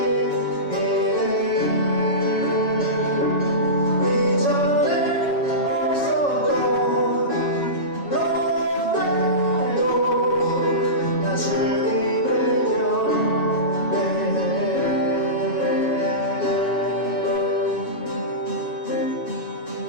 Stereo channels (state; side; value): late; right; 7.2 ms